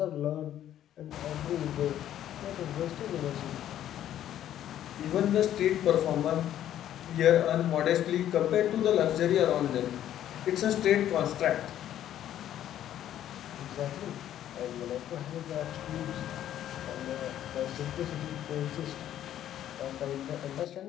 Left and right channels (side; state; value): right; quieter; 11.5 dB